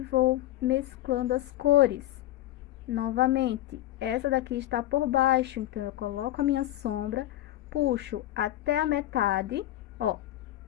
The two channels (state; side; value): quieter; right; 14.5 dB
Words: mesclando as cores. Novamente, essa daqui está por baixo, então eu coloco a minha sombra, puxo até a metade, ó.